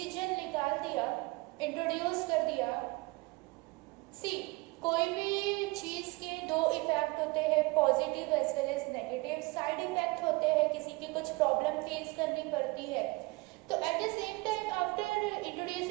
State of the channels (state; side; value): quieter; left; 24.5 dB